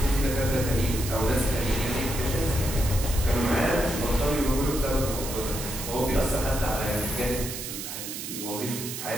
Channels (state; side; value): noise; right; hiss, 7 dB below the sound